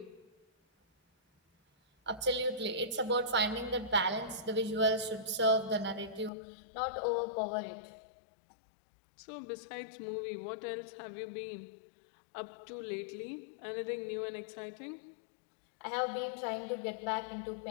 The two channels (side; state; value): right; drops out; at 6.3 s